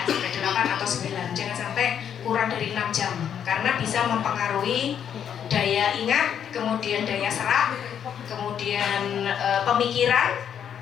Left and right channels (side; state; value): right; quieter; 8.7 dB